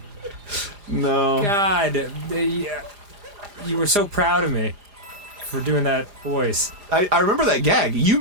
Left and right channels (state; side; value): late; left; 5.0 ms